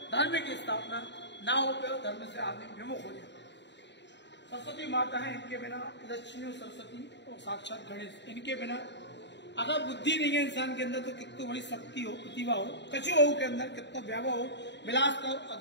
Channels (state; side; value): late; right; 0.51 ms